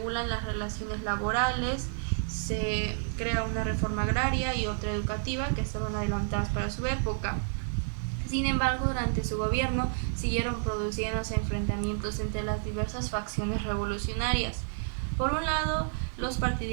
las relaciones laborales, se crea una reforma agraria y otra educativa que estaban adelantadas para su época. Sin embargo, durante su gobierno siguieron produciéndose enfrentamientos entre las diversas facciones revolucionarias. Por un lado, los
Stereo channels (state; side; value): silent; left; digital silence